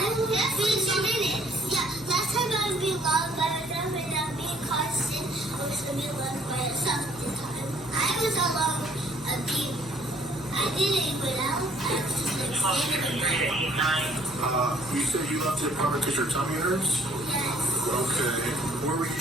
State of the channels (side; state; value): right; noise; hum, 21 dB below the sound